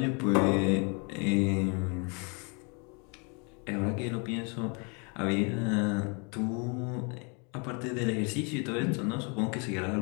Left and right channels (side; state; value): right; quieter; 34.3 dB